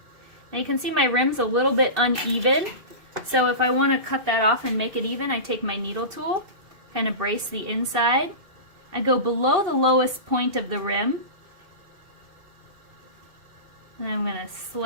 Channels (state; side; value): late; left; 2.7 ms